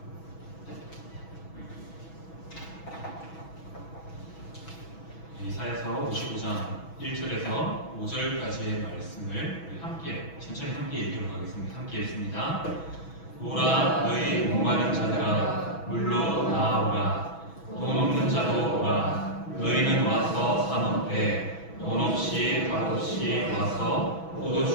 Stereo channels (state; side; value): late; right; 6.1 ms